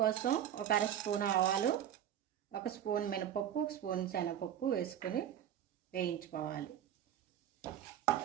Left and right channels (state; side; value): quieter; left; 10.3 dB